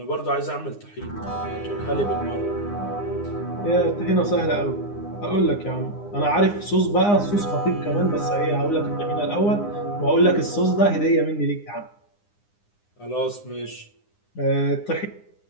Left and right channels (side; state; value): right; late; 9.8 ms